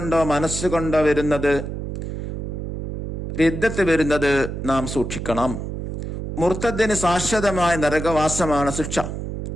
മനസ്സുകൊണ്ടോ റിദ്ദത്ത് വരുന്നത് നാം സൂക്ഷിക്കണം. മുർത്തദ്ദിന് ശാശ്വതമായ നരകവാസമാണ് ശിക്ഷ.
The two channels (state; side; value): noise; right; hum, 6 dB below the sound